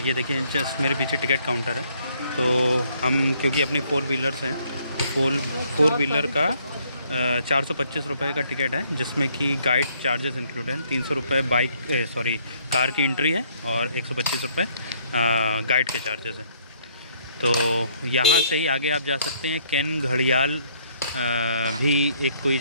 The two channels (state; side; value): inverted; both; correlation -0.65